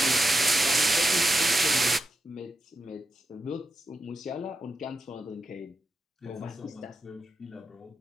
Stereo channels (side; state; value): both; normal; correlation 0.87